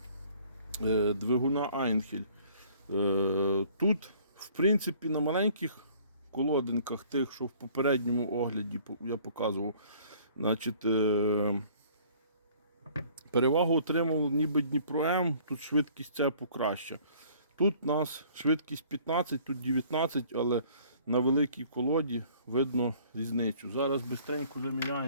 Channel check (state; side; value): inverted; both; correlation -0.56